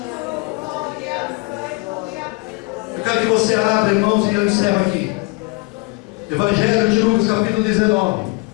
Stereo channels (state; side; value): quieter; right; 26.9 dB